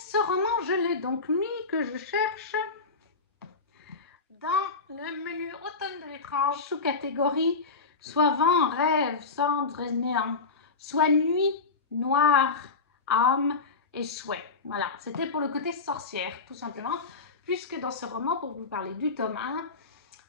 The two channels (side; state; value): right; quieter; 4.3 dB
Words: roman, je l'ai donc mis, que je cherche dans le menu Automne de l'étrange, sous-catégorie soit vent, rêve, cendre et néant, soit nuit, noir, âme et souhait. Voilà, c'était pour le côté sorcière, tout simplement, puisque dans ce roman, pour vous parler du tome 1,